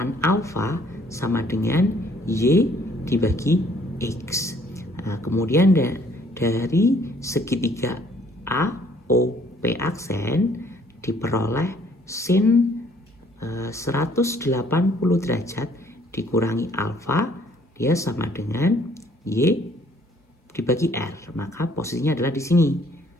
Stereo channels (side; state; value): both; normal; correlation 0.62